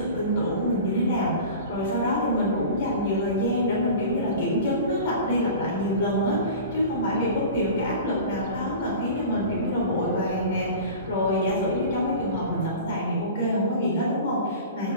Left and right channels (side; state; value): both; inverted; correlation -0.37